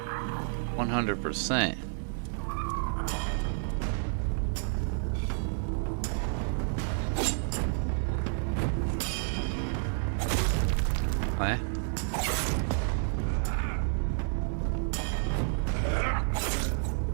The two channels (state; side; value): silent; left; 58 dB below the other